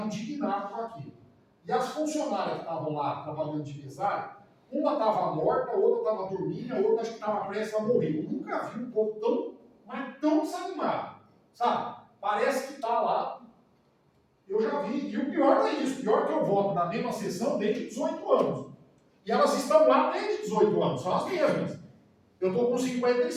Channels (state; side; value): identical; both; correlation 1.00